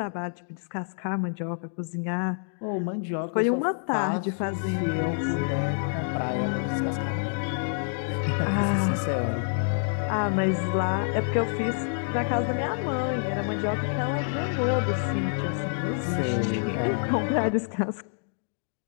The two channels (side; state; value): right; silent; digital silence